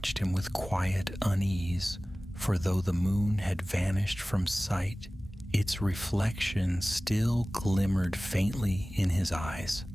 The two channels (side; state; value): both; normal; correlation 0.98